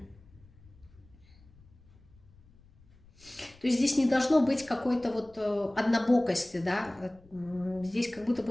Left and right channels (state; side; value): noise; left; rumble, 26 dB below the sound